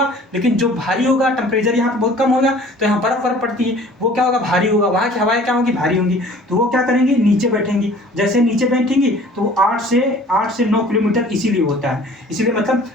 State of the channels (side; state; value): both; normal; correlation 0.49